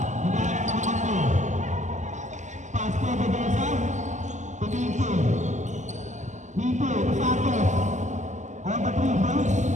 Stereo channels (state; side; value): late; left; 0.34 ms